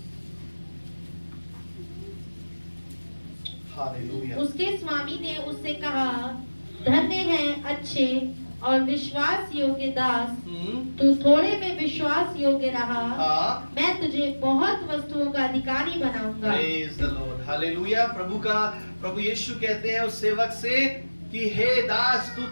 हालेलुया। उसके स्वामी ने उससे कहा, धन्य है अच्छे और विश्वास योग्य दास, तू थोड़े में विश्वास योग्य रहा, मैं तुझे बहुत वस्तुओं का अधिकारी बनाऊंगा। Praise the Lord. हालेलुया। प्रभु यीशु कहते हैं उस सेवक से कि हे दास, तू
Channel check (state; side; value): inverted; both; correlation -1.00